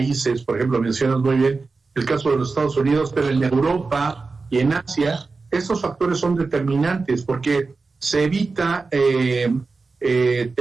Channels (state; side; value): quieter; left; 4.1 dB